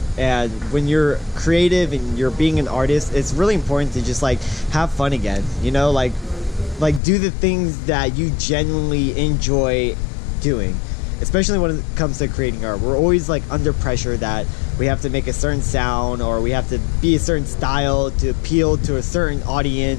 And when you're creative and you're being an artist, it's really important to just like have fun again, you know, like do the things that you genuinely enjoy doing, especially when it comes to creating art. We're always like under pressure that we have to make a certain sound or we have to be a certain style to appeal to a certain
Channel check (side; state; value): right; drops out; at 7.0 s